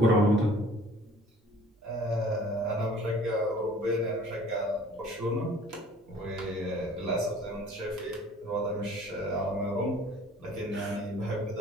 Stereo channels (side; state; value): both; normal; correlation 0.51